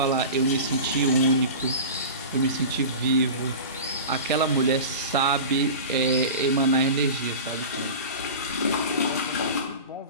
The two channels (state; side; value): inverted; both; correlation -0.31